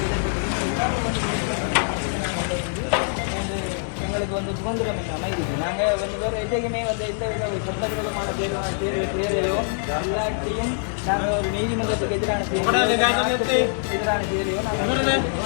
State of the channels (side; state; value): right; silent; 63 dB below the other